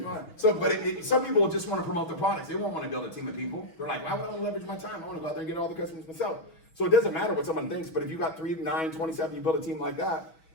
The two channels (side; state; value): right; late; 6.2 ms